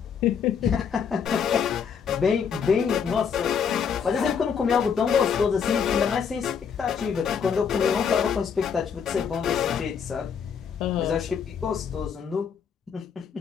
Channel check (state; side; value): quieter; right; 6.9 dB